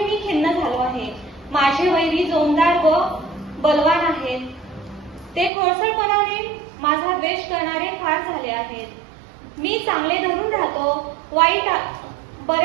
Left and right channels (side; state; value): left; drops out; at 5.5 s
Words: खिन्न झालो आहे. माझे वैरी जोमदार व बलवान आहेत. ते खोडसाळपणाने माझा द्वेष करणारे फार झाले आहेत. मी चांगले धरून राहतो,